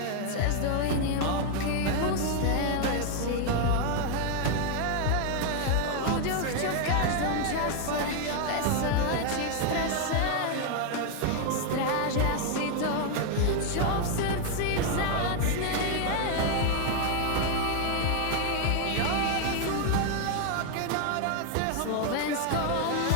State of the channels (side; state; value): both; different; correlation 0.00